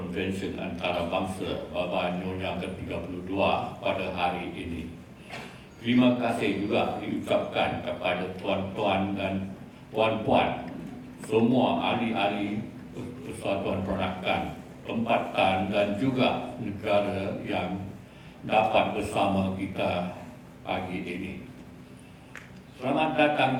antarabangsa Baba Nyonya ke-32 pada hari ini. Terima kasih juga diucapkan kepada tuan-tuan dan puan-puan, semua ahli-ahli Persatuan Peranakan, tempatan dan juga negara yang dapat bersama kita pagi ini. Selamat datang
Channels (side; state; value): both; identical; correlation 1.00